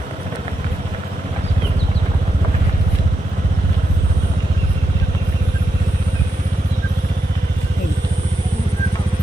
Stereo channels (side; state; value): both; normal; correlation 0.84